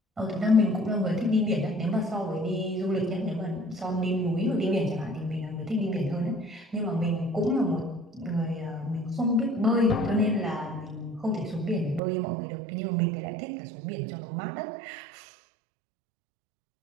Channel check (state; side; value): drops out; left; at 12.0 s